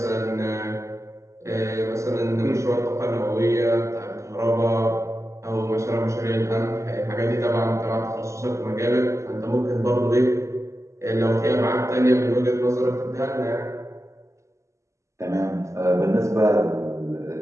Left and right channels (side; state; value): left; late; 0.14 ms